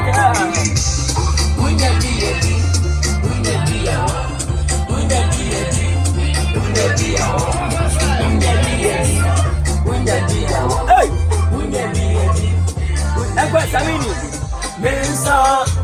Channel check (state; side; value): identical; both; correlation 1.00